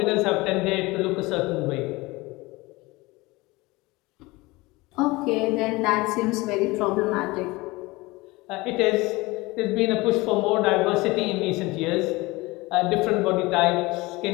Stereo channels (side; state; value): right; quieter; 22.1 dB